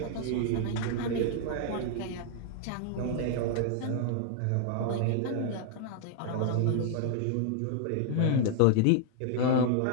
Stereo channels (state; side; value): different; both; correlation 0.00